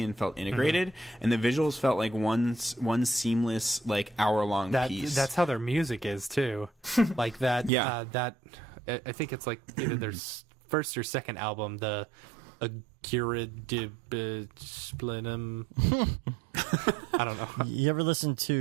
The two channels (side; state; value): left; drops out; at 7.7 s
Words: and felt integrated, and the visuals felt like one seamless like hour-long piece. That's how their music is too. Like that. That I think it's like either their first or second album, the Splinum. I don't know. You ever listen